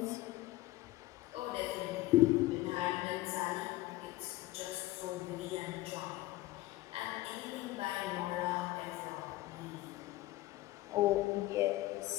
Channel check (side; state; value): right; quieter; 17.6 dB